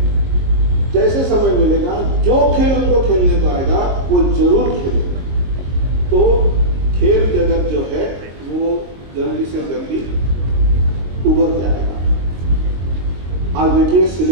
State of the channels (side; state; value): left; late; 22 ms